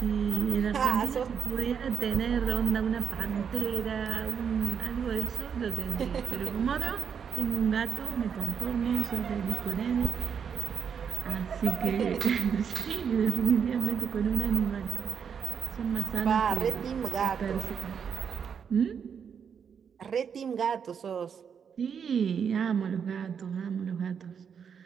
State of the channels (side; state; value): left; quieter; 7.2 dB